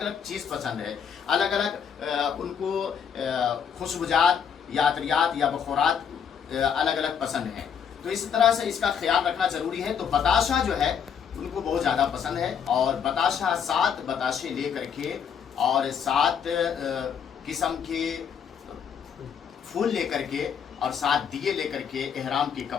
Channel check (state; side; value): quieter; right; 7.5 dB